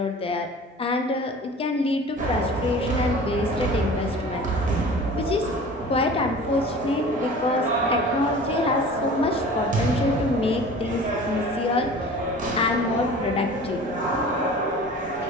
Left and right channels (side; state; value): both; normal; correlation 0.41